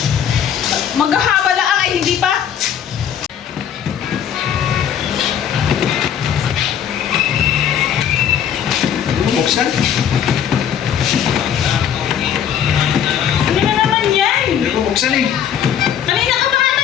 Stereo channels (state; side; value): quieter; right; 9.1 dB